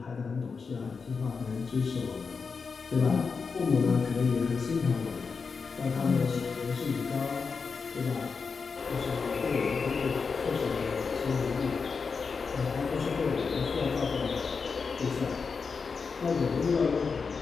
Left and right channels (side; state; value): right; quieter; 5.2 dB